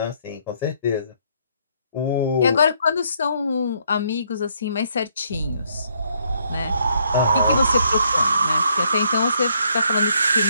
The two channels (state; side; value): inverted; both; correlation -0.70